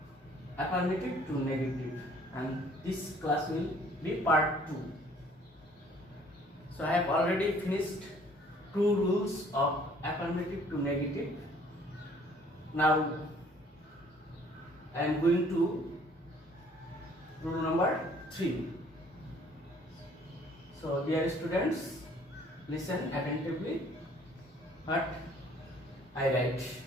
affirmative to negative, and this class will be part 2. So I have already finished 2 rules of affirmative to negative. Now I am going to rule number 3. So dear students, listen attentively what I write.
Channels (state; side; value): normal; both; correlation 0.58